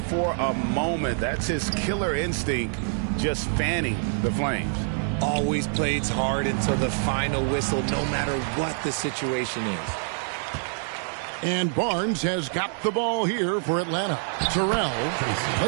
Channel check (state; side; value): silent; left; 61 dB below the other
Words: for a moment. That's his killer instinct, just fanning the flames. Always plays hard until the final whistle, no matter what the situation is. And Barnes has got the ball here for Atlanta. Terrell